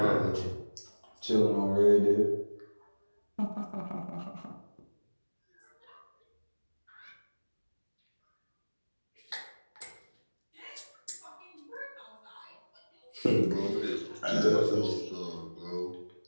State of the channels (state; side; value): inverted; both; correlation -1.00